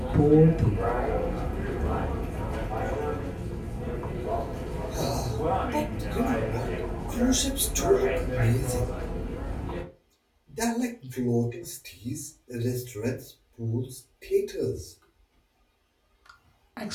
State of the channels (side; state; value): both; identical; correlation 1.00